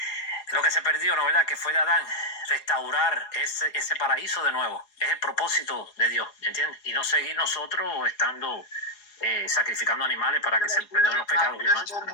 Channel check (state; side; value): late; right; 4.8 ms